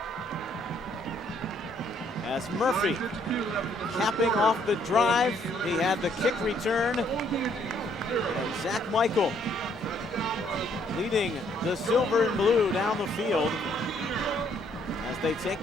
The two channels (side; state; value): both; normal; correlation 0.67